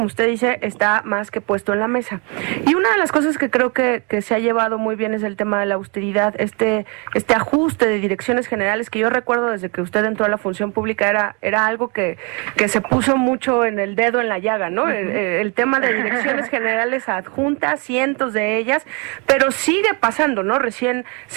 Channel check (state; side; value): quieter; left; 32.7 dB